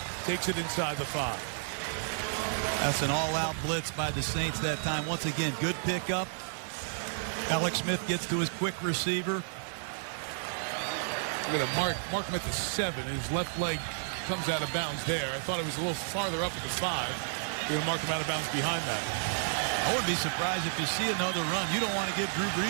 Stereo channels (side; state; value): left; silent; digital silence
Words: takes it inside the 5. That's an all-out blitz by the Saints that time. Once again, good pickup. Alex Smith gets to his quick receiver. Look at him mark him at the 7. His left leg comes out of bounds there. I thought it was a little farther up at the 5. You're going to mark him out of bounds behind that. I wouldn't be surprised if you see another run. You don't want to give Drew